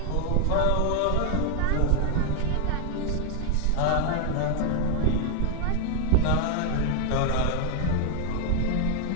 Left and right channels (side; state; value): both; different; correlation 0.00